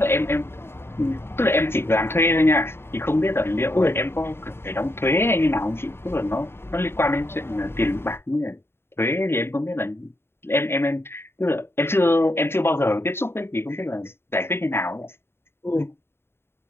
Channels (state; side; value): late; right; 0.11 ms